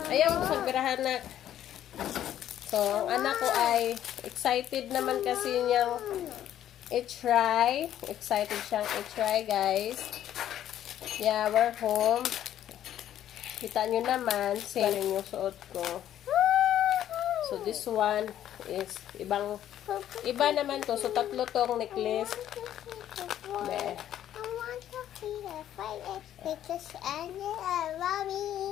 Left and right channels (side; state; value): right; quieter; 11.4 dB